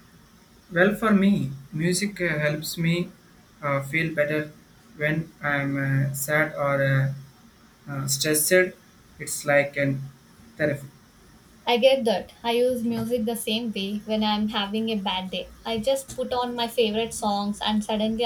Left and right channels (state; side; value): identical; both; correlation 1.00